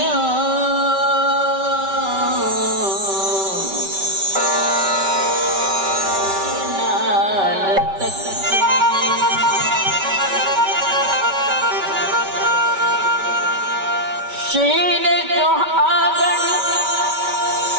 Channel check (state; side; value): late; left; 5.2 ms